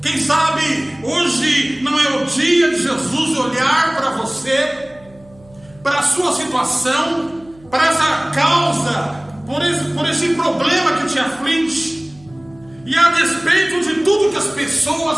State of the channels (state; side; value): noise; right; hum, 27 dB below the sound